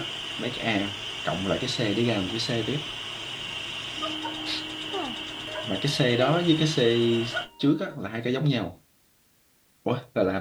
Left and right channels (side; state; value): both; identical; correlation 1.00